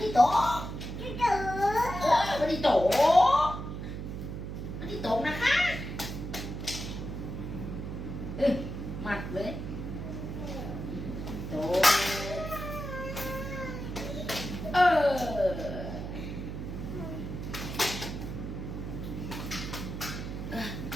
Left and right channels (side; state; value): right; noise; hum, 6 dB below the sound